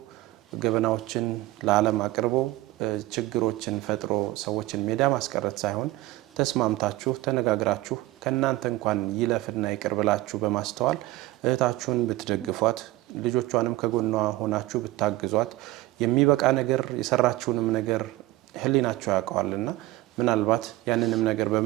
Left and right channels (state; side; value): quieter; left; 17.6 dB